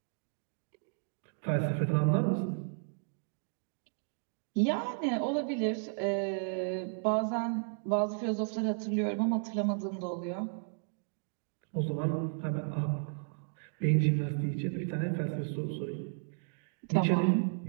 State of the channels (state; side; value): silent; left; digital silence